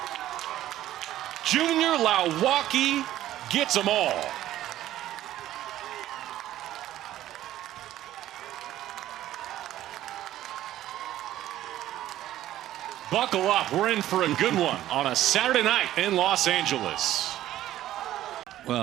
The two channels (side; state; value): left; quieter; 13.5 dB